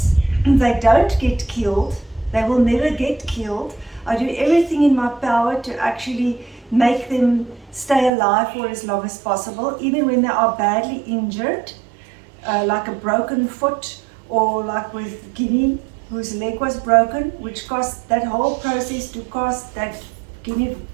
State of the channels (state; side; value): drops out; left; at 8.1 s